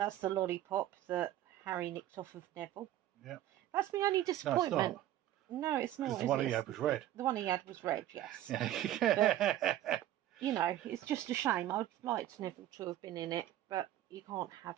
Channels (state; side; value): quieter; left; 13.1 dB